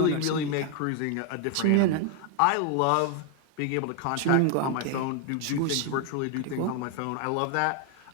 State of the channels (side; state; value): both; different; correlation 0.01